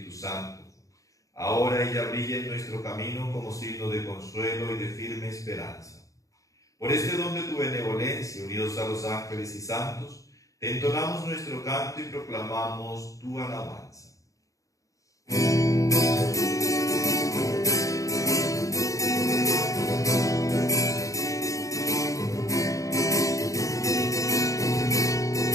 Santo. Ahora ella brilla en nuestro camino como signo de consuelo y de firme esperanza. Por este don de tu benevolencia, unidos a los ángeles y santos, te entonamos nuestro canto y proclamamos tu alabanza.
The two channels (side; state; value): right; late; 0.16 ms